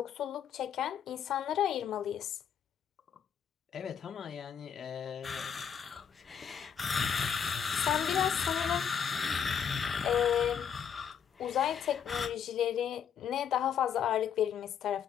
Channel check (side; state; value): right; quieter; 7.9 dB